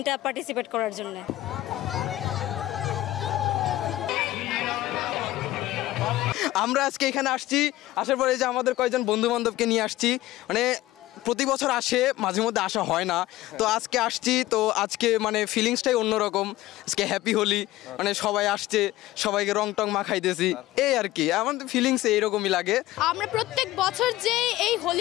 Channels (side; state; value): right; quieter; 16.3 dB